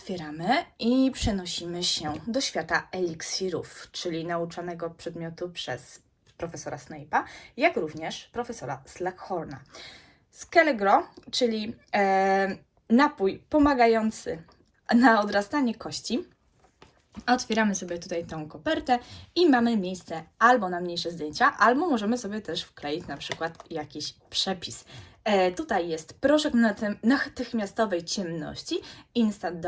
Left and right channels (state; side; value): identical; both; correlation 1.00